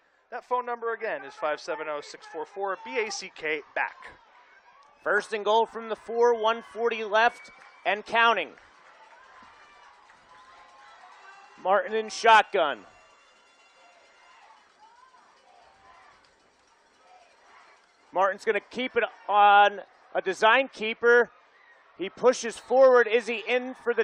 That phone number again is 570-644-BACK, back. 1st and goal from the 4, 140 left and counting. Martin in shotgun. Martin's going to keep it on a design keeper. He pushes forward. Is he in for the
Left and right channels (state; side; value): identical; both; correlation 1.00